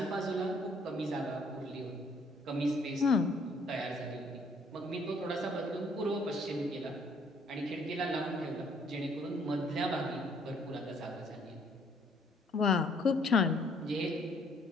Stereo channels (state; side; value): normal; both; correlation 0.63